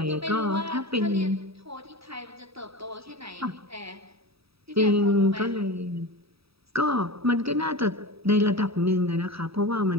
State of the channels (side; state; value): left; late; 0.77 ms